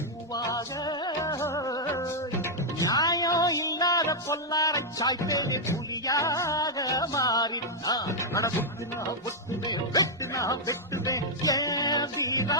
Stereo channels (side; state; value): both; normal; correlation -0.04